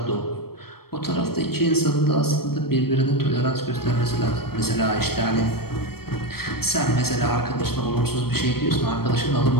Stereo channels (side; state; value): right; late; 0.94 ms